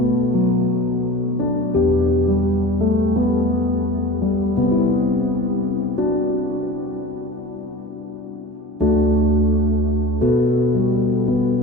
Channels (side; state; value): both; normal; correlation 0.37